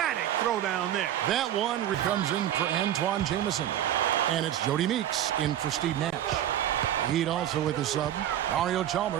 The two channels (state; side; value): quieter; left; 11.6 dB